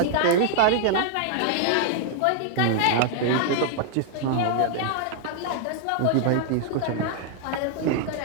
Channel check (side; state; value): both; different; correlation 0.00